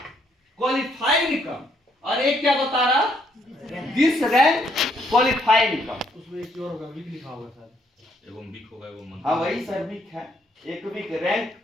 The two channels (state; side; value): normal; both; correlation 0.70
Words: क्वालिफाइड इनकम, और एक क्या बता रहा दिस रैंक क्वालिफाइड इनकम। उसमें एक और होगा, वीक लिखा होगा शायद। एगो वीक होगा एगो मंथ। हाँ वही सर वीक है, एक वीक